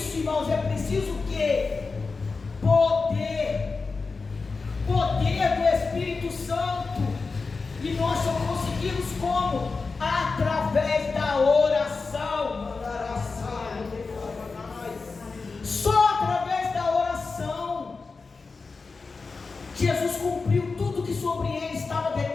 irmãos, é preciso o quê? Poder do Espírito Santo. E nós só conseguimos como? Através da oração. Só através da oração. Jesus cumpriu tudo que sobre ele estava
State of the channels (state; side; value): quieter; right; 4.3 dB